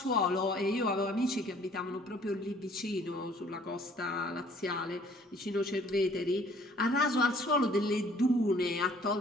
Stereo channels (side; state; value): both; normal; correlation 0.57